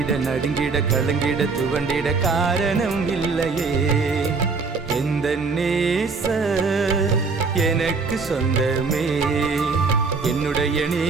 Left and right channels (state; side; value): quieter; left; 4.5 dB